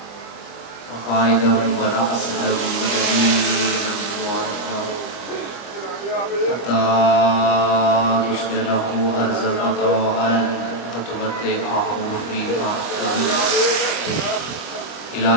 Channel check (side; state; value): right; late; 25 ms